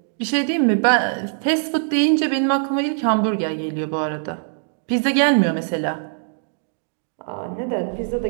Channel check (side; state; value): left; silent; digital silence